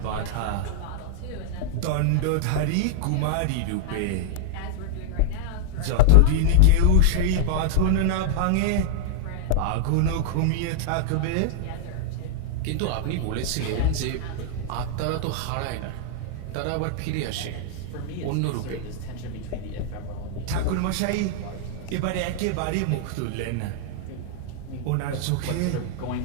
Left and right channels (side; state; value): both; different; correlation -0.01